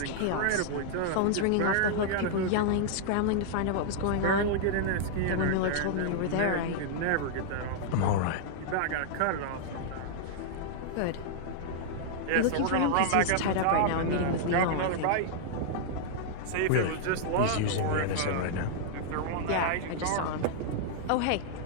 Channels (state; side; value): different; both; correlation -0.01